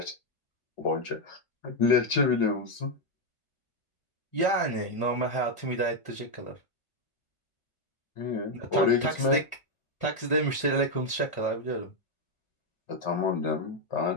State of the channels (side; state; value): right; late; 1.5 ms